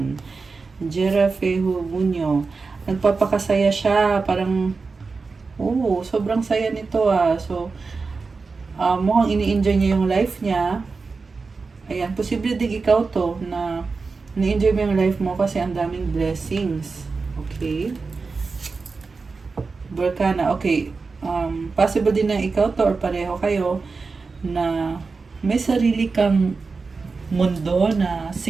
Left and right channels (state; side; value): quieter; left; 4.4 dB